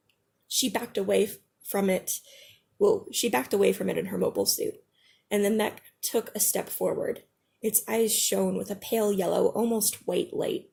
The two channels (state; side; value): identical; both; correlation 1.00